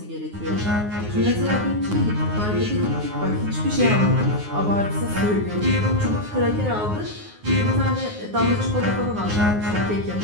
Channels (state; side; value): late; left; 9.6 ms